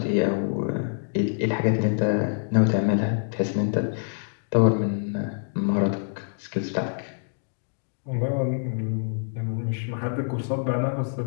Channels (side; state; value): right; silent; digital silence